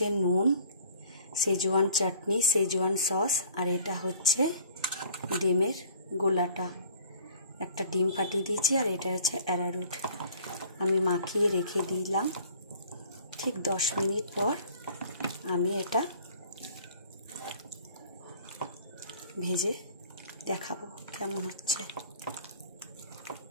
নুন, সেজওয়ান চাটনি, সেজওয়ান সস, আর এটা হচ্ছে ডিমের গোলাটা। একটা ডিম ফাটিয়ে দিয়েছি, আর এটা হচ্ছে অ্যারারুট। আমি মাখিয়ে রেখে দিলাম। ঠিক 10 মিনিট পর আমি এটা ভেজে দেখাবো কেমন হচ্ছে।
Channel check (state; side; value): inverted; both; correlation -0.51